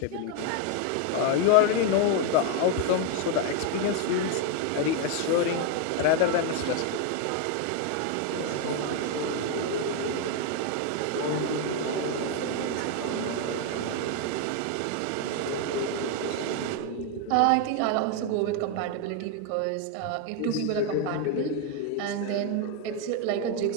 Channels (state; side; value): different; both; correlation 0.01